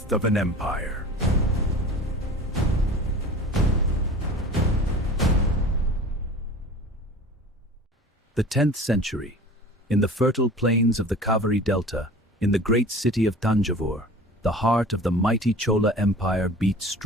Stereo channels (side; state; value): both; normal; correlation 0.40